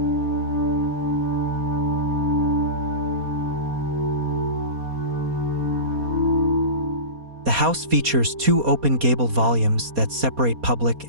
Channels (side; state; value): left; late; 4.2 ms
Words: The house features two open gabled volumes that separate